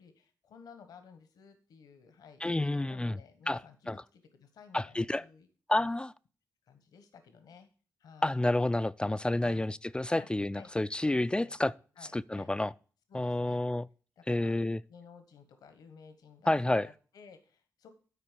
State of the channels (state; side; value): normal; both; correlation 0.97